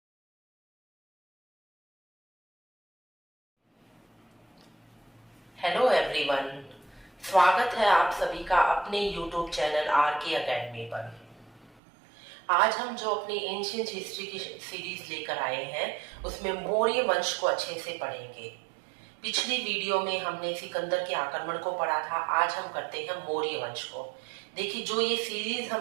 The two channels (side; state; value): left; drops out; at 11.8 s